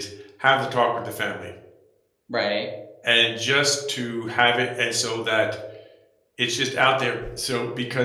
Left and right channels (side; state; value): both; identical; correlation 1.00